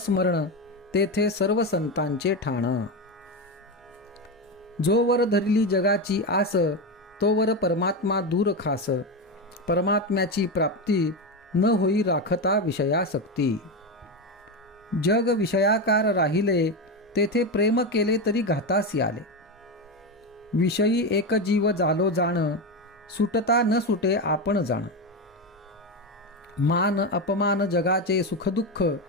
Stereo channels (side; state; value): both; normal; correlation 0.14